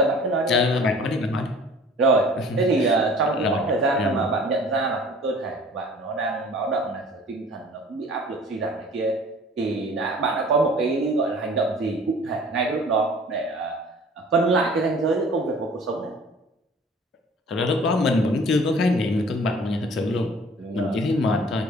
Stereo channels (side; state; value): both; normal; correlation 0.48